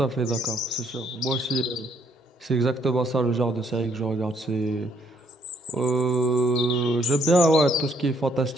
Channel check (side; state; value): both; normal; correlation 0.68